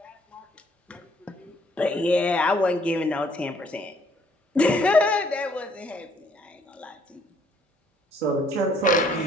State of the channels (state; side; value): normal; both; correlation 0.64